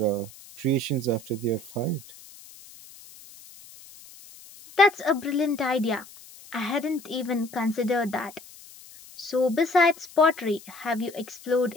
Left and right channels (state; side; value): noise; left; hiss, 20 dB below the sound